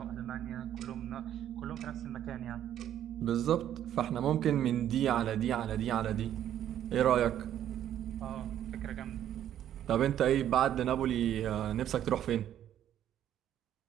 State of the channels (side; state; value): left; quieter; 11.0 dB